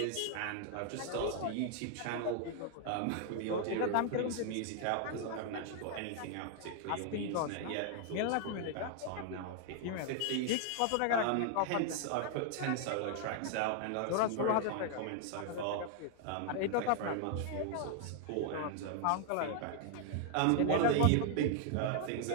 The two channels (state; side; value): different; both; correlation 0.00